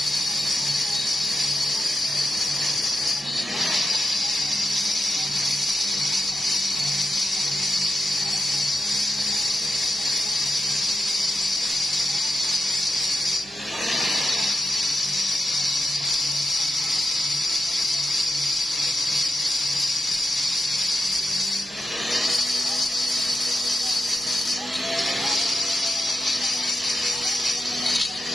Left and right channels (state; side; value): noise; right; hum, 26 dB below the sound